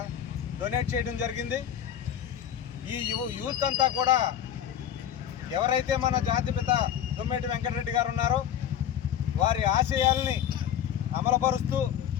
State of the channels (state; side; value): quieter; right; 9.8 dB